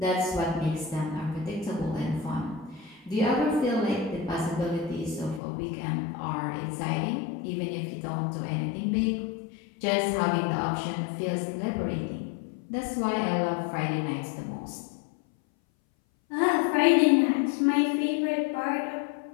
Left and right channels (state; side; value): drops out; right; at 5.4 s